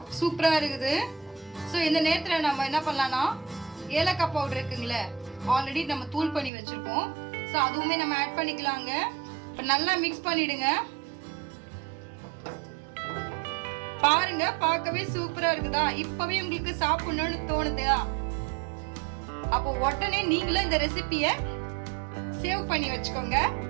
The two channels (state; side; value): drops out; left; at 6.5 s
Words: சூப்பராக இருக்குது. ஸோ இந்த நேரத்தில் நம்ம என்ன பண்ணலான்னா ஏலக்காய் பவுடர் இருக்குங்களே, ஆல்ரெடி நம்ம தூள் பண்ணி வச்சுருக்கோம். ஸோ அதுவுமே நம்ம ஆட் பண்ணிக்கலாங்க. இப்போ நல்லா மிக்ஸ் பண்ணிவிடுங்க. பாருங்க, பார்க்கவே சூப்பரா இருக்குதா? இப்பவே உங்களுக்கு சாப்பிடணும்னு தோணுதா? அப்போ உடனே நீங்களும் இந்த ரெசிபியை சேவ் பண்ணி வச்சுக்கோங்க.